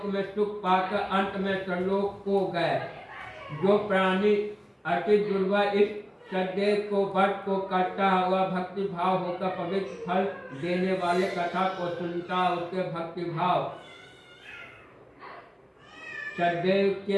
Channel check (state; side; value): identical; both; correlation 1.00